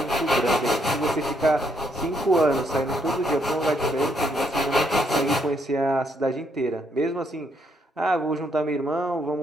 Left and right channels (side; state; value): both; normal; correlation 0.73